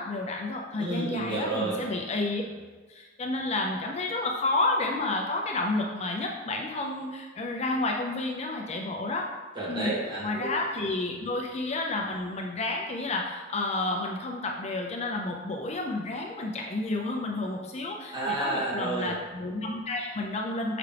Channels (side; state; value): both; normal; correlation 0.14